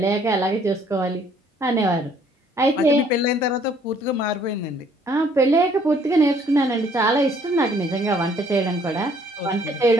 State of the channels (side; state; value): both; normal; correlation 0.61